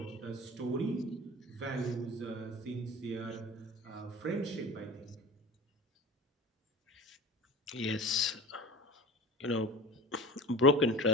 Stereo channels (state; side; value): normal; both; correlation 0.34